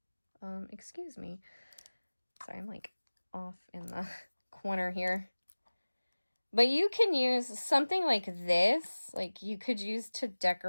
Excuse me. Sorry, I'm like off in the corner here. But you can use something like this, like you could use to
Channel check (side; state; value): both; inverted; correlation -1.00